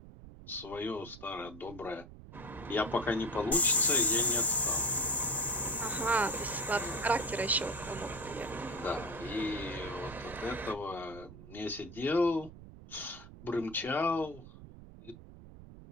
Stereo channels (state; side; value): noise; right; rumble, 16 dB below the sound